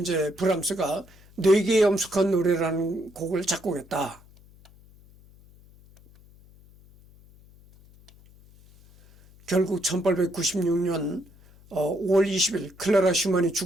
브람스가 4개의 엄숙한 노래라는 곡을 작곡했다. 결국 1896년 5월 20일 클라라 슈만이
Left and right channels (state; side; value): noise; left; hum, 26 dB below the sound